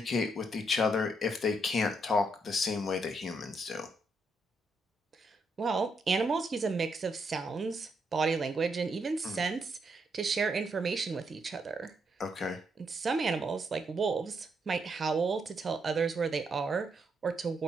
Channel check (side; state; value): both; normal; correlation 0.77